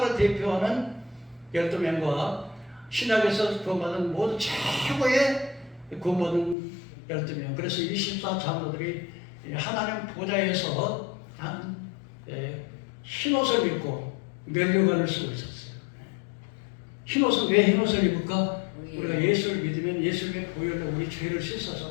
대표하는 12명과 신약에서 구원받은 모든 최고의 구원받은 12명. 그래서 24장로들이 하나님 보좌에서 흰옷을 입고 면류관을 쓰고 있었어요. 흰옷은 왜 흰옷을 입을까? 우리가 예수를 믿으면 예수님의 보혈로 우리 죄를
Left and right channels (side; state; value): right; drops out; at 6.6 s